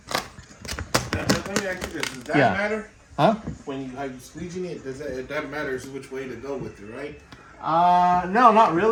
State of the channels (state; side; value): identical; both; correlation 1.00